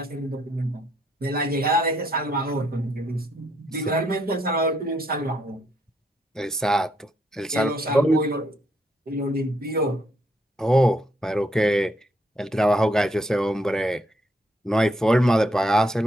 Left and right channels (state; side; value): normal; both; correlation 0.73